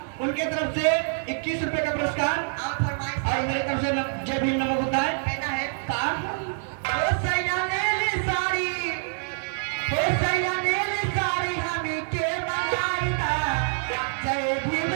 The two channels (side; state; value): left; silent; digital silence